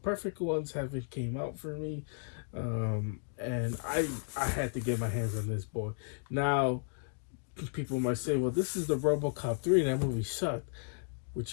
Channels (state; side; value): silent; right; digital silence